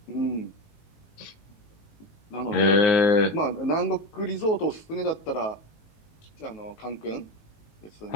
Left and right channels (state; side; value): late; right; 19 ms